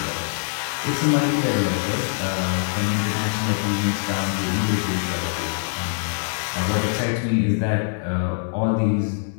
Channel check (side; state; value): right; silent; digital silence